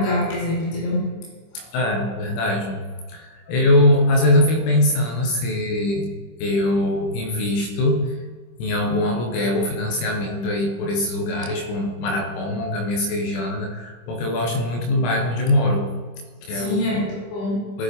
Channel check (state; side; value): late; right; 25 ms